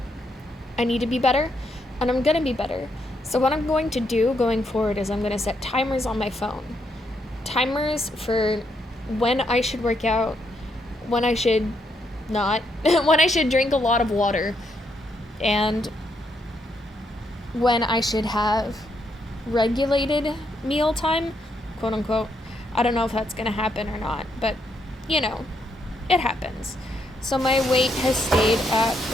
I need to be better, and I'm gonna be better. So what I'm going to do going forward is I'm gonna set timers on my phone. Timers for when I should work out, when I should not, when I should drink a lot of water, and when I should have regulated meal time, quote unquote. I don't know if that's going to happen or not, but, you know, it happens. So my weight has stayed at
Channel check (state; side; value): normal; both; correlation 0.77